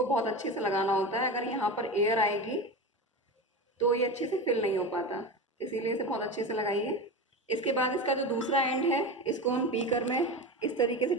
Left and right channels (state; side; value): normal; both; correlation 0.24